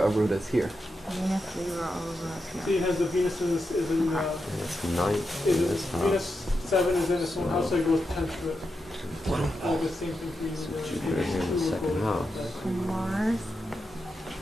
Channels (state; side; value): normal; both; correlation 0.87